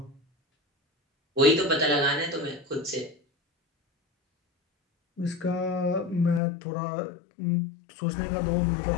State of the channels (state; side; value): drops out; right; at 6.4 s